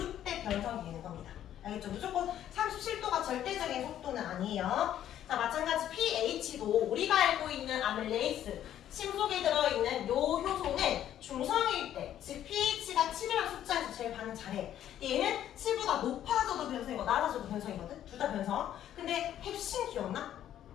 변성이 되는 겁니다. 알겠죠? 무조건 37도가 절대적인 속도는 아니에요. 자, 마찬가지 pH도 우리가 알고 있는 아밀레이스 침 속에 들어있는 요 효소는 중성일 때, 즉 pH가 7이라는 숫자에서 제일 반응 잘해. 얘는 7보다 높아져도 변성이고 낮아져도 변성이거든? 둘 다 변성. 근데 햅신 기억나?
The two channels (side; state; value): right; quieter; 11.2 dB